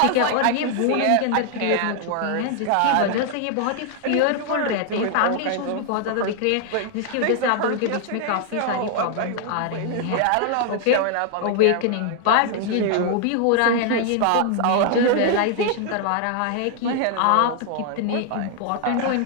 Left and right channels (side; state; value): both; different; correlation 0.00